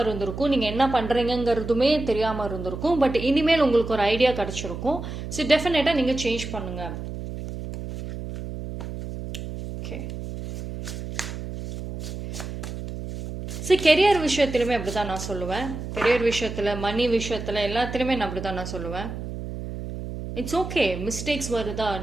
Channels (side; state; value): right; noise; hum, 8 dB below the sound